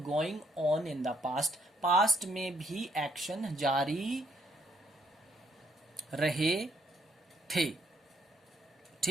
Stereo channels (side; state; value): both; normal; correlation 0.70